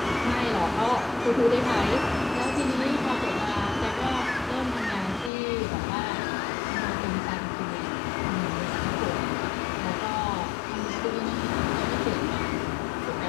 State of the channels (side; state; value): right; drops out; at 5.3 s